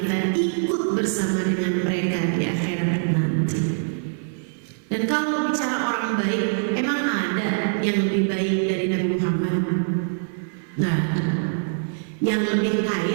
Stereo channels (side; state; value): left; silent; 57 dB below the other